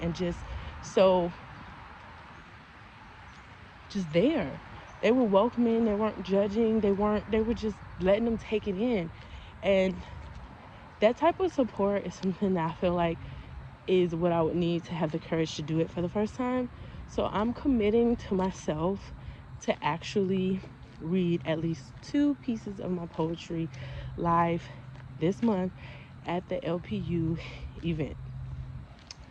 and just so there. They were welcoming, they weren't judging, they were just letting them take it in. And that type of support is something that I feel like is what I would need to have the courage to do it for the first time. So I'm committing to myself to actually read at least 2 pieces of my poetry live this month at the LPU event.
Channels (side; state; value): both; identical; correlation 1.00